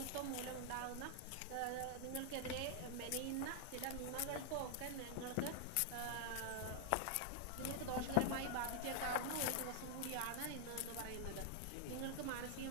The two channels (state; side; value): different; both; correlation 0.00